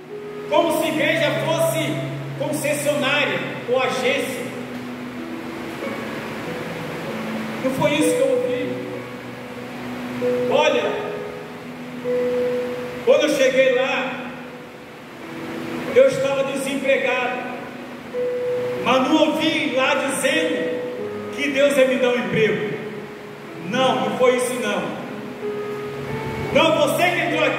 como se a igreja fosse concessionária ou agência. Não foi isso que eu ouvi. Olha, quando eu cheguei lá, eu estava desempregado, mas não ouvi lá dizendo que Deus ia me dar um emprego. Não foi isso não. Não, você que entrou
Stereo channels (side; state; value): both; identical; correlation 1.00